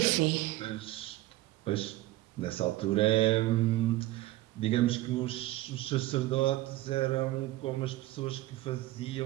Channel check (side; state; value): left; quieter; 16.9 dB